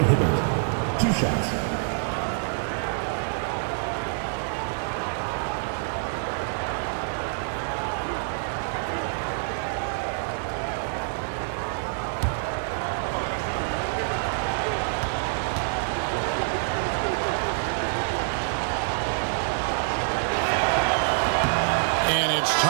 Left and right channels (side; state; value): left; silent; digital silence